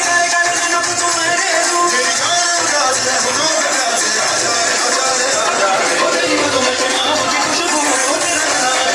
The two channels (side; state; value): both; identical; correlation 1.00